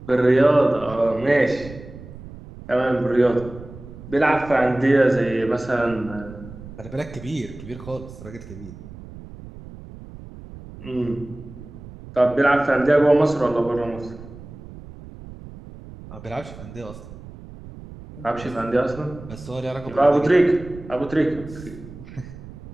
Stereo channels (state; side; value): noise; right; rumble, 16 dB below the sound